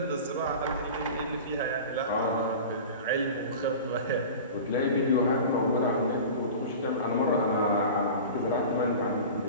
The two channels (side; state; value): both; inverted; correlation -0.35